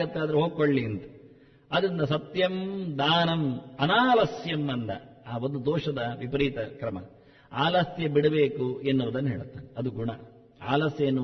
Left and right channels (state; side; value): identical; both; correlation 1.00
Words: ಆದ್ರೆ ಹೋಗ್ಕೊಳ್ಳಿ ಅಂತ. ಅದರಿಂದ ಸತ್ಯಂ ದಾನಂ ಅನಾಲಸ್ಯಂ ಅಂದ. ಆ ಒಂದು ದೋಷದ ವಿಪರೀತ ಕ್ರಮ. ಆಲಸ್ಯ ಬಿಡಬೇಕು ಎನ್ನುವುದನ್ನು ಹೇಳುತ್ತಾನೆ. ಅದು ಗುಣ. ಆಲಸ್ಯ